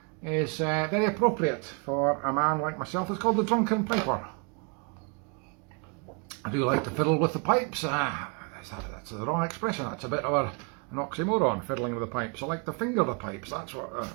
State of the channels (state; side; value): quieter; left; 34.8 dB